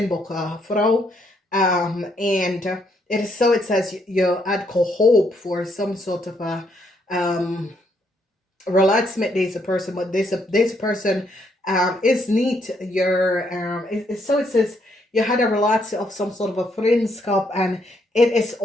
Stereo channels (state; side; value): normal; both; correlation 0.73